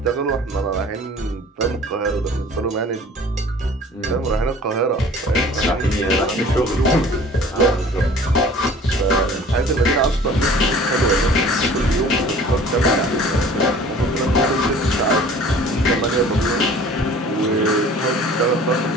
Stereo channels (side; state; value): both; normal; correlation 0.48